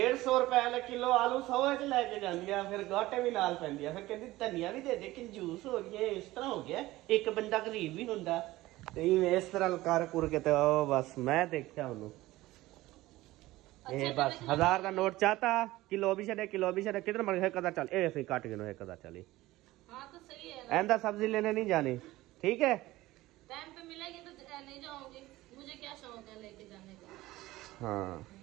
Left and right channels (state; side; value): quieter; left; 17.7 dB